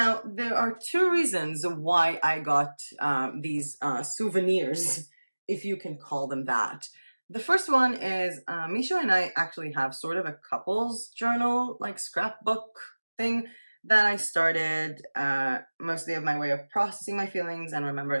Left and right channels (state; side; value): inverted; both; correlation -1.00